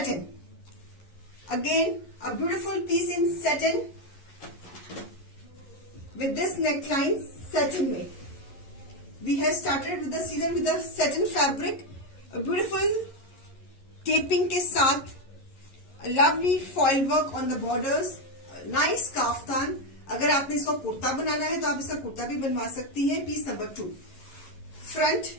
Again, a beautiful piece in satin with this neckline satin में. We have started with the season with the satin fabric, a beautiful taping के साथ, a lovely foil work on the borders, a nice kaftan. अगर आपने इसको कुर्ता बनाना है तो आप इसका कुर्ता भी बनवा सकती हैं. Piece number 2. Front.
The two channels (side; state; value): right; late; 11 ms